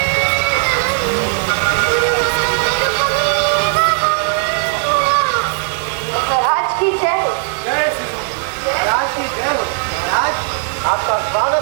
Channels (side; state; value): left; silent; 65 dB below the other